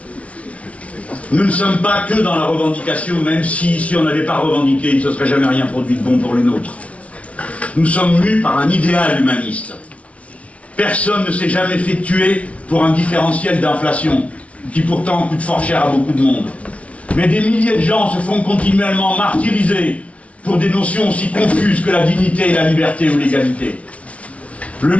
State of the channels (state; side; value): late; right; 0.064 ms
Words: Nous ne sommes pas que dans la revendication, même si on n'avait pas revendiqué, il ne se serait jamais rien produit de bon pour les nôtres. Nous sommes mus par un idéal humaniste. Personne ne s'est jamais fait tuer pour un différentiel d'inflation, qui pourtant coûte fort cher à beaucoup de monde. Mais des milliers de gens se font continuellement martyriser pour des notions aussi confuses que la dignité et la liberté ou l'égalité. Le